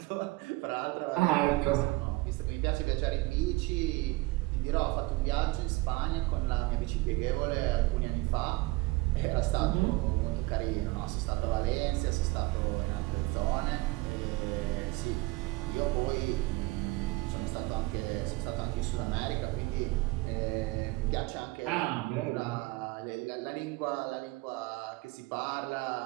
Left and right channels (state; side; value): quieter; left; 21.9 dB